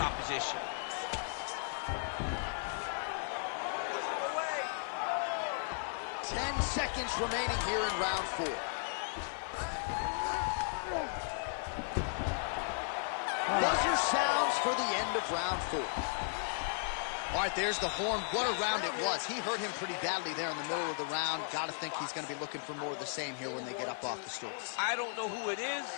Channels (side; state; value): right; silent; 54 dB below the other